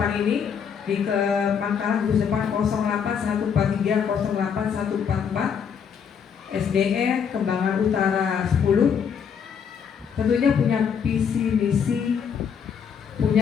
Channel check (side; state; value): right; quieter; 7.2 dB